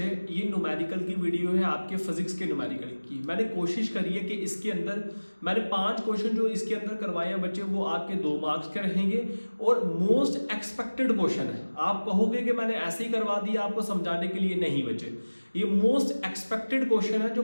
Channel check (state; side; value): inverted; both; correlation -1.00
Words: ये न्यूमेरिकल की वीडियो है, आपके फिजिक्स के न्यूमेरिकल की। मैंने कोशिश करी है कि इसके अंदर मैंने 5 क्वेश्चन जो इसके अंदर करवाए हैं बच्चे, वो आपके 2 मार्क्स के रहेंगे और मोस्ट एक्सपेक्टेड क्वेश्चन है। आप कहोगे कि मैंने ऐसे ही करवा दिया आपको समझाने के लिए, नहीं बच्चे, ये मोस्ट एक्सपेक्टेड क्वेश्चन है। जो